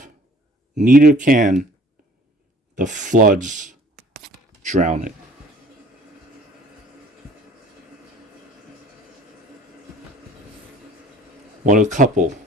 neither can the floods drown it." What a couple.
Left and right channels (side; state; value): both; normal; correlation 0.52